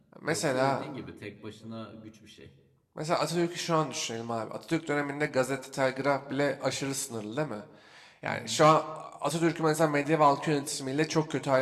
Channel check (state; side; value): identical; both; correlation 1.00